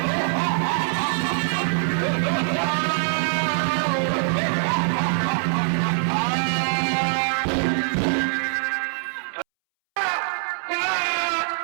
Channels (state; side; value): silent; left; 63 dB below the other